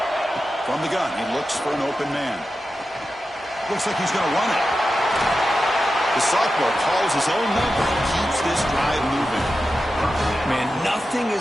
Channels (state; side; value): normal; both; correlation 0.91